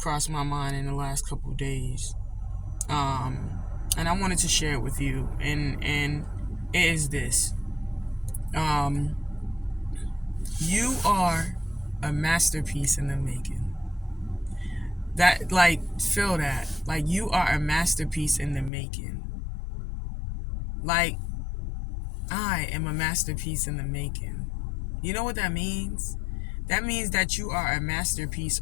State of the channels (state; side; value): drops out; right; at 18.7 s